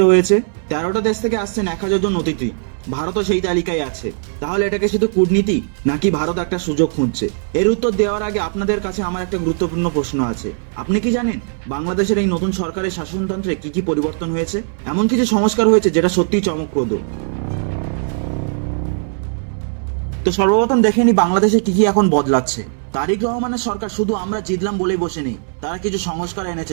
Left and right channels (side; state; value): left; silent; 67 dB below the other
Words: হয়েছে। 13টা দেশ থেকে আসছেন 1000 জন অতিথি। ভারতও সেই তালিকায় আছে। তাহলে এটাকে শুধু কূটনীতি, নাকি ভারত একটা সুযোগ খুঁজছে? এর উত্তর দেওয়ার আগে আপনাদের কাছে আমার একটা গুরুত্বপূর্ণ প্রশ্ন আছে। আপনি কি জানেন বাংলাদেশের এই নতুন সরকারের শাসনতন্ত্রে কি কি পরিবর্তন হয়েছে? এমন কিছু সংস্কার হয়েছে যেটা সত্যিই চমকপ্রদ। তো সর্বপ্রথম দেখে নি বাংলাদেশে কি কি এখন বদলাচ্ছে। তারেক রহমানের সরকার শুধু আমরা জিতলাম বলেই বসে নেই, তারা কিছু সংস্কার এনেছে